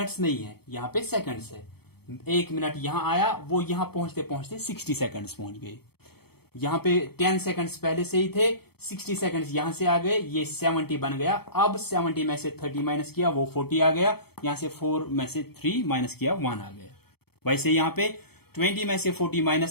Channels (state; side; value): late; right; 0.96 ms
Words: नहीं है, यहां पे सेकंड्स है। 1 मिनट यहां आया, वो यहां पहुंचते पहुंचते 60 सेकंड्स पहुंच गए। यहां पे 10 सेकंड्स पहले से ही थे, 60 सेकंड्स यहां से आ गए, ये 70 बन गया। अब 70 में से 30 माइनस किया, वो 40 आ गया। यहां से 4 में से 3 माइनस किया, 1 आ गया। वैसे यहां पे 20 में से 40